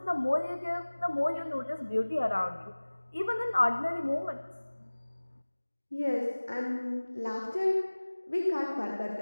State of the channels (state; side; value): inverted; both; correlation -1.00